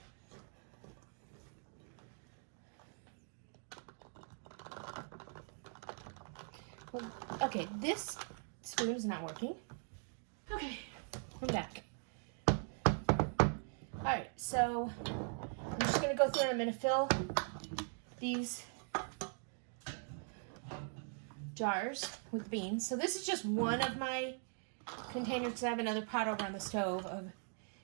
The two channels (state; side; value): silent; left; 50 dB below the other